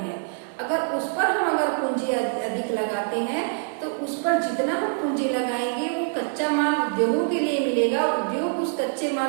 अगर उस पर हम पूंजी अधिक लगाते हैं तो उस पर जितना हम पूंजी लगाएंगे वो कच्चा माल उद्योगों के लिए मिलेगा, उद्योग उस कच्चे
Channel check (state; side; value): silent; left; digital silence